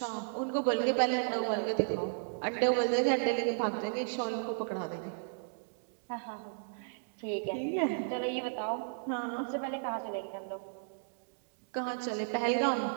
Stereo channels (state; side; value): silent; left; digital silence